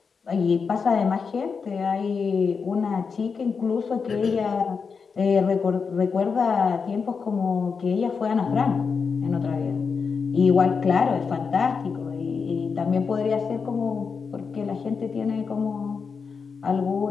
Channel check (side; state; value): right; quieter; 5.5 dB